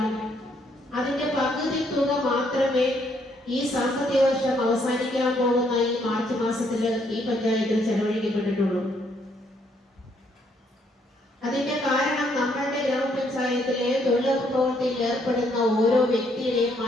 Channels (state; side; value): normal; both; correlation 0.70